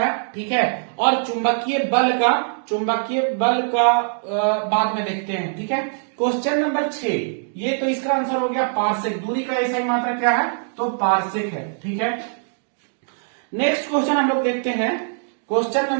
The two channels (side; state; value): left; silent; digital silence